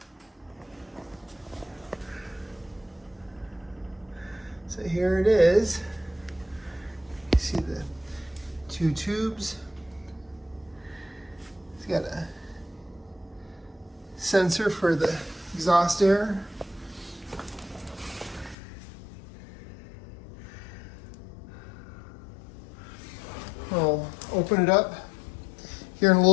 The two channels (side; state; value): right; drops out; at 18.6 s